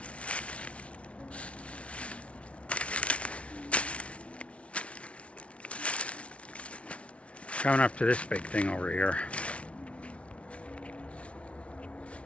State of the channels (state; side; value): late; right; 0.062 ms